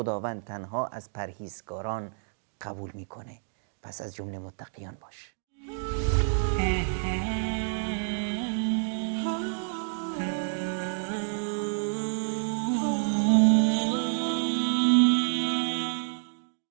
تنها از پرهیزگاران قبول میکنه، پس از جمله متقیان باش.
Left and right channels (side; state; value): left; silent; digital silence